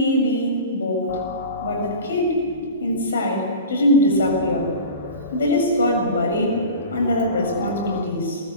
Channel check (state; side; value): inverted; both; correlation -0.35